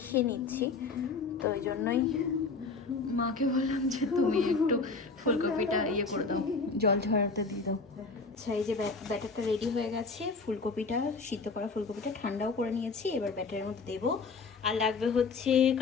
নিচ্ছি। তো ওই জন্যই মাকে বললাম যে তুমি একটু ফুলকপিটা করে দাও, জল ঝরাতে দিয়ে দাও। আচ্ছা, এই যে ব্যাটারটা রেডি হয়ে গেছে। ফুলকপিটা, সিদ্ধ করা ফুলকপিটা ঠান্ডাও করে নিয়েছি। এবার ব্যাটারের মধ্যে দেবো। আর লাগবে হচ্ছে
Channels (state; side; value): quieter; right; 4.3 dB